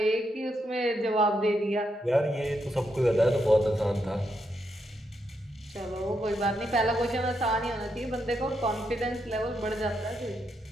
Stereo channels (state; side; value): normal; both; correlation 0.81